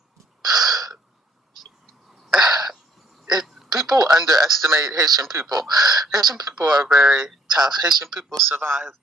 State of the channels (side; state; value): both; normal; correlation 0.63